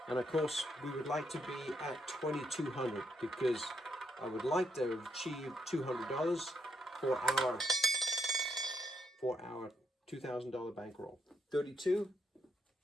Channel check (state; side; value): normal; both; correlation 0.77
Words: And of course, we would like to be at 2,200 because I would like to achieve $200 for our $2,000 bankroll. 32,